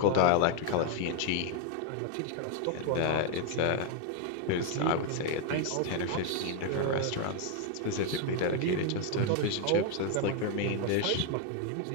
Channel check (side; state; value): both; different; correlation 0.00